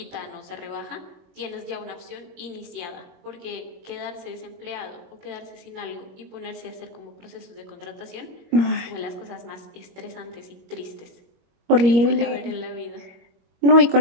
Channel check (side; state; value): left; late; 21 ms